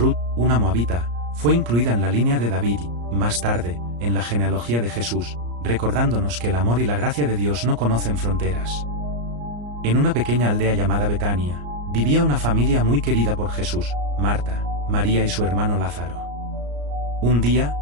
una moabita, fue incluida en la línea de David y, más tarde, en la genealogía de Jesús, recordándonos que el amor y la gracia de Dios no conocen fronteras. En una pequeña aldea llamada Betania, vivía una familia muy querida por Jesús, Marta, María y su hermano Lázaro. Un día,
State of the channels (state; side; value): late; left; 34 ms